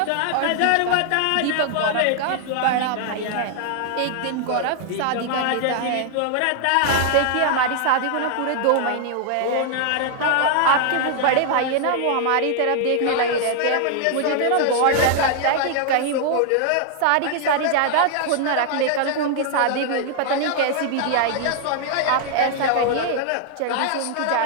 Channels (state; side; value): different; both; correlation 0.00